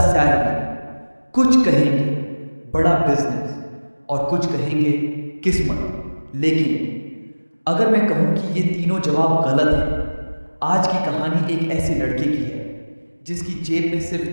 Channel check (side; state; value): both; inverted; correlation -1.00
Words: सैलरी, कुछ कहेंगे बड़ा बिजनेस और कुछ कहेंगे किस्मत। लेकिन अगर मैं कहूं कि ये तीनों जवाब गलत हैं। आज की कहानी एक ऐसे लड़के की है जिसकी जेब में